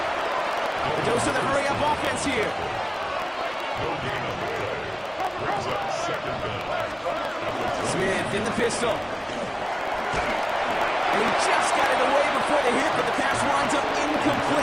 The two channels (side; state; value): both; identical; correlation 1.00